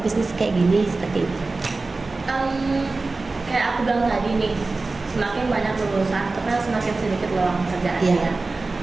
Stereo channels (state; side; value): quieter; left; 3.6 dB